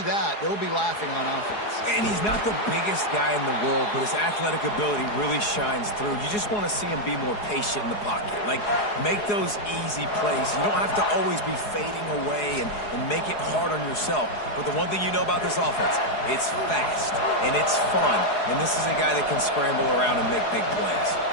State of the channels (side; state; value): right; late; 4.8 ms